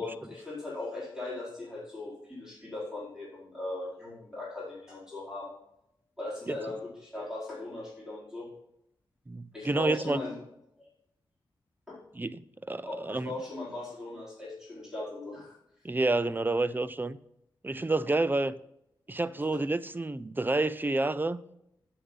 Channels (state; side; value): normal; both; correlation 0.83